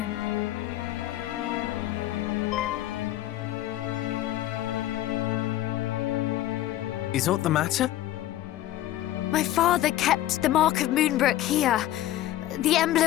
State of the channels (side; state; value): right; quieter; 14.1 dB